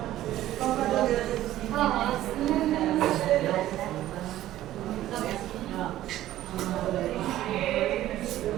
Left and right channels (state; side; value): quieter; left; 14.0 dB